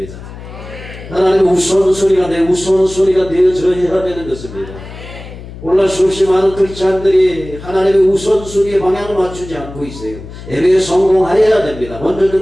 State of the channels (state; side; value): noise; left; hum, 14 dB below the sound